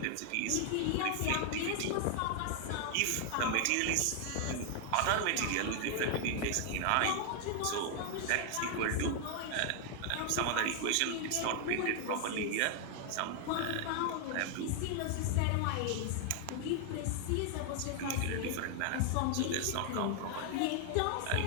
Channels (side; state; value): both; different; correlation 0.00